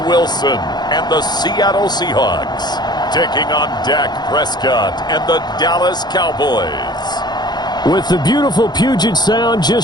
Wilson and the Seattle Seahawks taking on Dak Prescott and the Dallas Cowboys. With the beautiful Puget Sound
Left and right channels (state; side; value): late; right; 0.21 ms